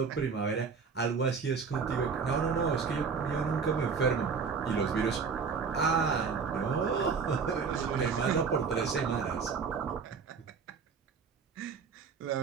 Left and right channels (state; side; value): quieter; left; 5.6 dB